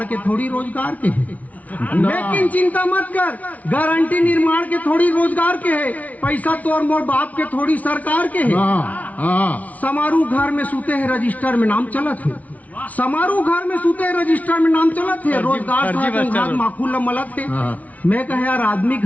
के थोड़ी रोजगार के है। लेकिन चिंता मत कर, गारंटी निर्माण के थोड़ी रोजगार के है, पैसा तो और मोर बाप के थोड़ी सरकार के है। समारोह घर में सूते हैं, रजिस्टर में नाम चलत है। समारोह घर में सूते हैं, रजिस्टर में नाम चलत है। रोजगार माखूल मलत है। मैं कहे यार, आदमी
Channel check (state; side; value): late; right; 0.071 ms